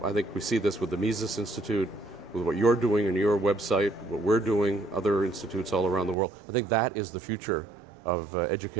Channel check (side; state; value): left; drops out; at 6.2 s